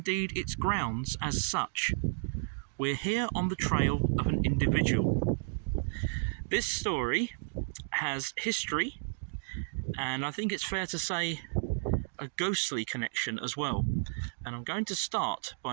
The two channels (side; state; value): left; silent; digital silence